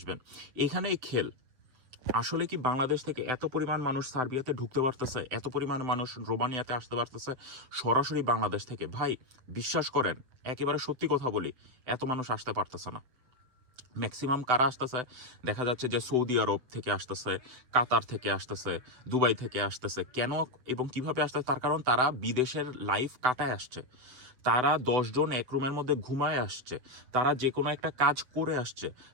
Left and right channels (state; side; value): late; left; 7.9 ms